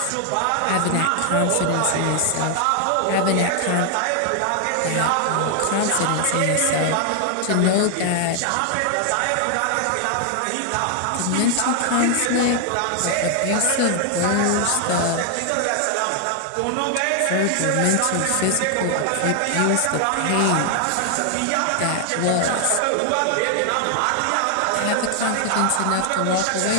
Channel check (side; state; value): both; different; correlation 0.00